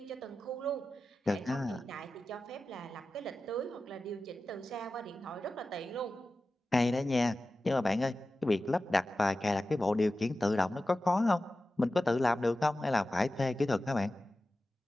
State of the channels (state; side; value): normal; both; correlation 0.94